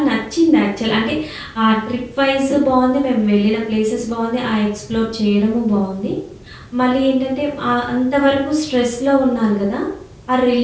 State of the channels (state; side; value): identical; both; correlation 1.00